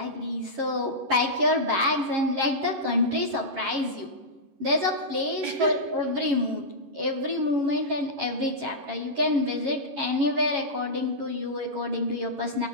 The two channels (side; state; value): left; late; 11 ms